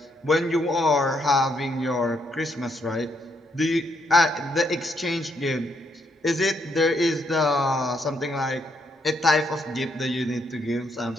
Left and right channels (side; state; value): both; normal; correlation 0.75